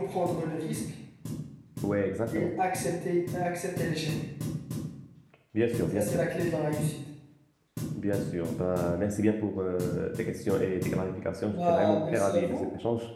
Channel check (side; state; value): both; identical; correlation 1.00